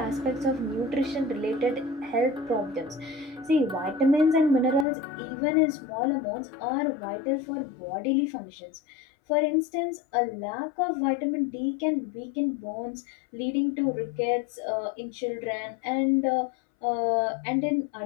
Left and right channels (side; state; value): right; drops out; at 4.9 s